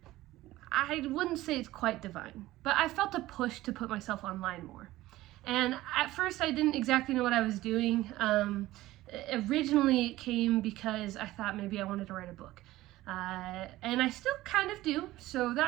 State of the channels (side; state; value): left; quieter; 16.7 dB